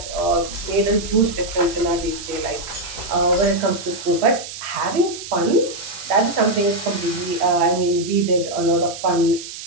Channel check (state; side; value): noise; right; hiss, 11 dB below the sound